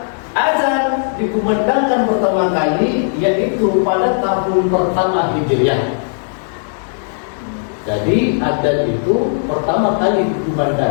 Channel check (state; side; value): silent; right; digital silence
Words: azan dikumandangkan pertama kali yaitu pada tahun pertama Hijriah. Jadi adzan itu pertama kali